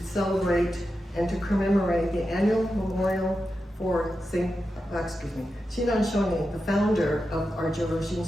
celebrate and to commemorate the annual memorial for Shinran Shonin, the founder of our Joro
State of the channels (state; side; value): normal; both; correlation 0.90